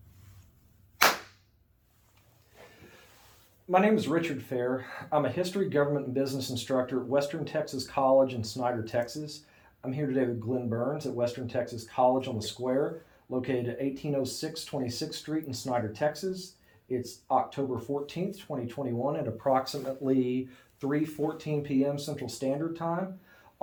My name is Richard Fair. I'm a history, government, and business instructor at Western Texas College in Snyder, Texas. I'm here today with Glen Burns at Western Texas College on the Square, located at 1806 26th Street in Snyder, Texas. It's October 14th, 2021 at approximately 3:14 p.m. Central Standard Time.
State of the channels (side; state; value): both; identical; correlation 1.00